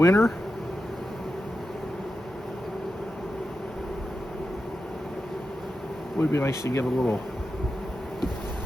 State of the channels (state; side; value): normal; both; correlation 0.90